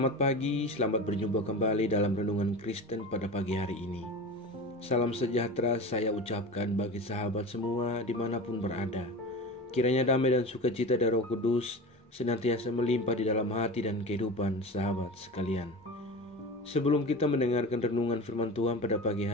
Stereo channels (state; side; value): normal; both; correlation 0.31